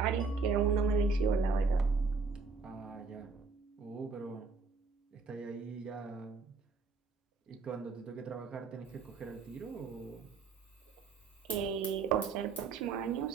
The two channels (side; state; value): left; quieter; 4.5 dB